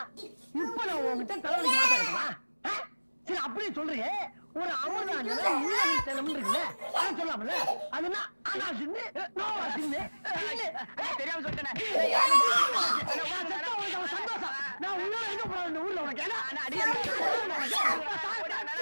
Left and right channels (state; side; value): inverted; both; correlation -1.00